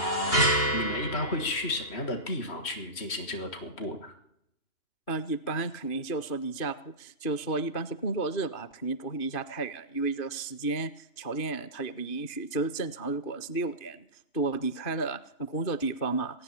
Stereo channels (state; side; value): late; right; 3.1 ms